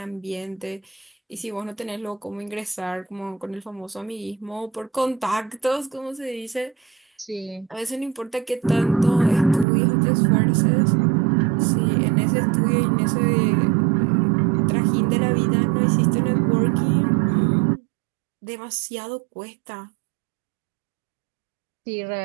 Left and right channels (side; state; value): left; drops out; at 9.7 s